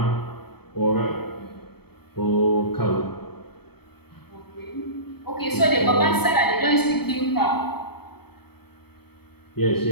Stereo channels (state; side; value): late; right; 0.97 ms